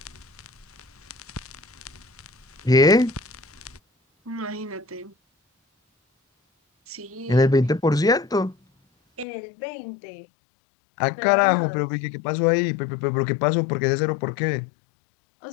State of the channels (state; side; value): drops out; right; at 9.2 s